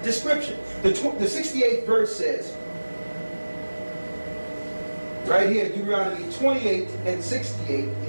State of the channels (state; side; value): inverted; both; correlation -1.00